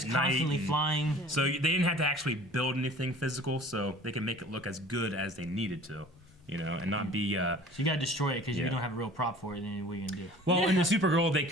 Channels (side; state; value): both; normal; correlation 0.46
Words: constantly flying. So they didn't have to actually build anything physical, so they can make it look as good as they needed to, and not be... So you gotta destroy it, because if you don't have a real prop for it, then what are you gonna do? Well, in the Supergirl,